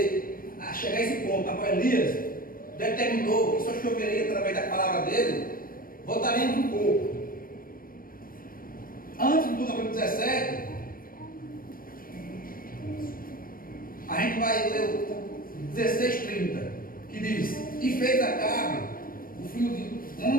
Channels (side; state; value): right; late; 0.41 ms